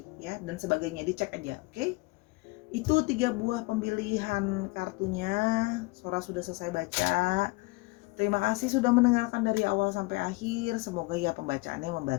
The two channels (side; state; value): right; quieter; 24.7 dB